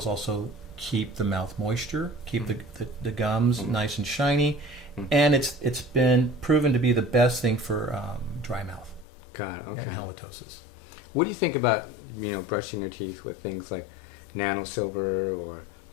also keep the mouth moisture, keep the gums nice and shiny, and it's been proven to be the best thing for dry mouth and halitosis. What do you think about brushing your teeth with things like nanosilver or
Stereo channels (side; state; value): right; drops out; at 9.1 s